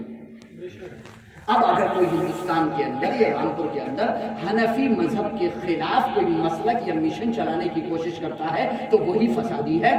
اب اگر کوئی ہندوستان کے اندر یا رامپور کے اندر حنفی مذہب کے خلاف کوئی مسلک یا مشن چلانے کی کوشش کرتا ہے تو وہی فسادی ہے،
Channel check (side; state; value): both; identical; correlation 1.00